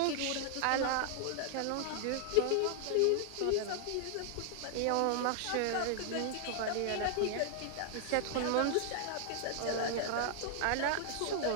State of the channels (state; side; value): different; both; correlation 0.00